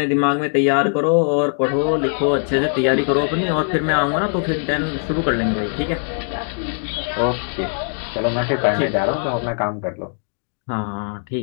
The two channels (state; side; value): silent; right; digital silence